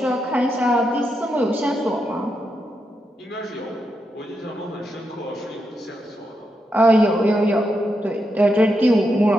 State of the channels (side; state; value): both; normal; correlation 0.84